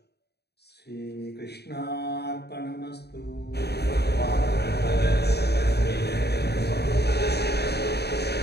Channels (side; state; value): right; late; 0.48 ms